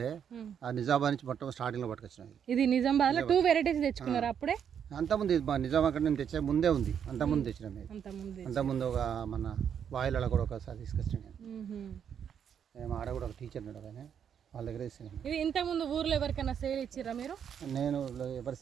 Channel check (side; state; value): left; quieter; 8.2 dB